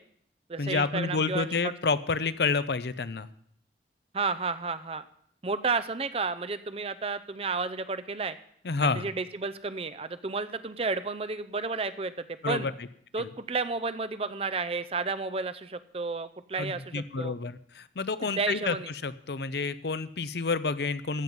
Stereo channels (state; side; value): normal; both; correlation 0.04